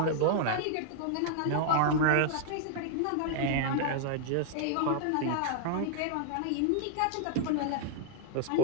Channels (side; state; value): both; different; correlation 0.00